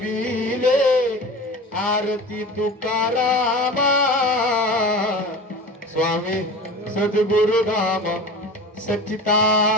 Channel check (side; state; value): both; normal; correlation 0.34